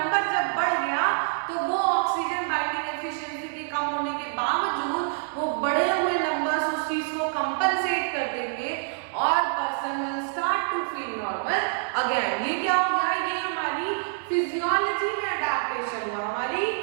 जब बढ़ गया तो वो ऑक्सीजन बाइंडिंग एफिशिएंसी के कम होने के बावजूद वो बढ़े हुए नंबर्स उस चीज को कंपनसेट कर देंगे और person will start to feel normal again. ये क्या हो गया, ये हमारी फिजियोलॉजी में अडैप्टेशन हुआ, हमारी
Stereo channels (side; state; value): left; silent; digital silence